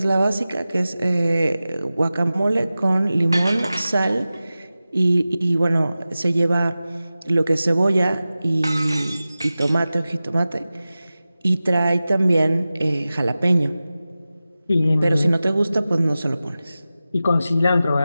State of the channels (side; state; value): both; inverted; correlation -0.95